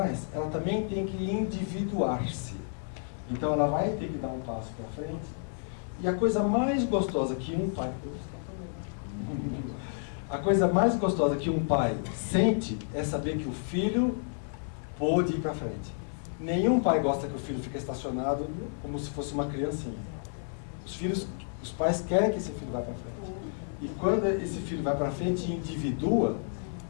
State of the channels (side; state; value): right; silent; 57 dB below the other